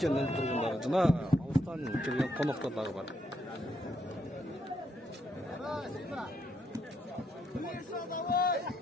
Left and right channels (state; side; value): normal; both; correlation 0.76